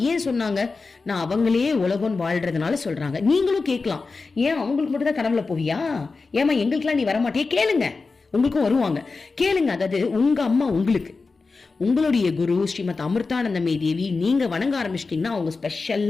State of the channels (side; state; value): right; quieter; 4.1 dB